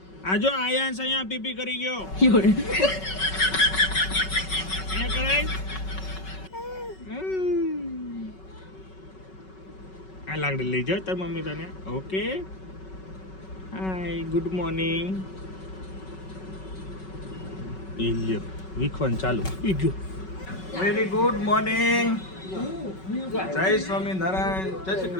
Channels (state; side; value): late; right; 5.3 ms